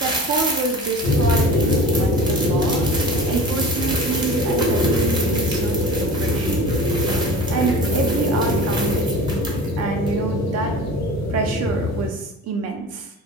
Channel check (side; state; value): both; normal; correlation 0.38